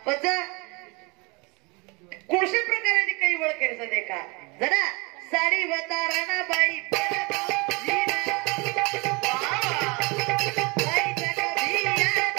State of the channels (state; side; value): quieter; left; 27.9 dB